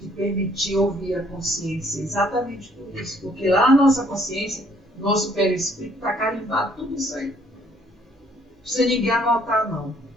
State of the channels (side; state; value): both; normal; correlation 0.63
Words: permitir ouvir a consciência, exatamente por isso, porque lá na nossa consciência, nosso perispírito está carimbado tudo isso aí. Não precisa ninguém anotar, não.